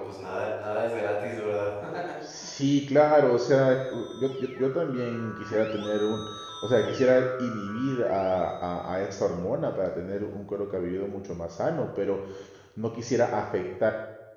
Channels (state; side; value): identical; both; correlation 1.00